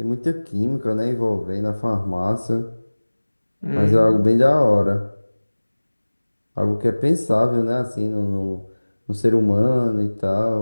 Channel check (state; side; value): inverted; both; correlation -1.00